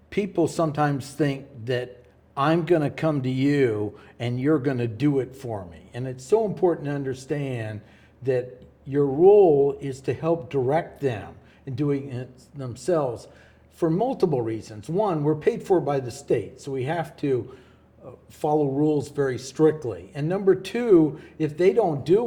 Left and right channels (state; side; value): identical; both; correlation 1.00